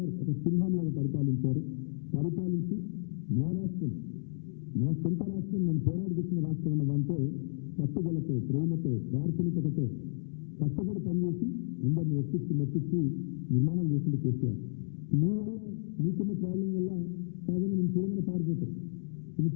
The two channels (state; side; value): silent; right; 56 dB below the other